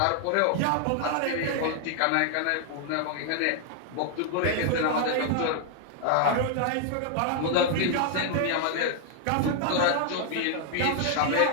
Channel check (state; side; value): different; both; correlation 0.00